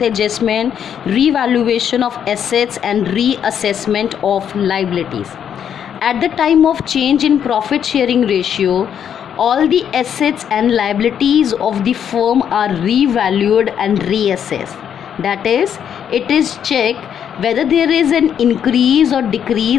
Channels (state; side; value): quieter; right; 8.7 dB